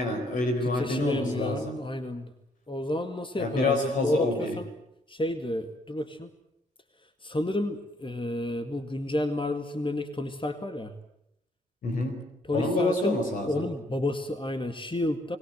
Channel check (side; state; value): both; normal; correlation 0.68